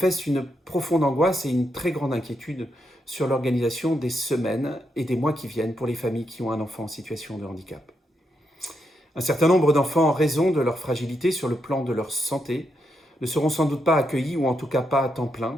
une profonde angoisse et une très grande inquiétude sur l'organisation des semaines et des mois qui viennent pour les familles qui ont un enfant en situation de handicap. Un certain nombre d'enfants, en raison de leur fragilité sur le plan de leur santé, ne seront sans doute pas accueillis, ou en tout cas pas à temps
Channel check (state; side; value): normal; both; correlation 0.81